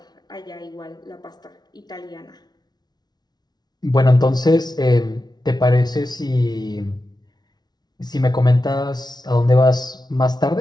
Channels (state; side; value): late; right; 0.19 ms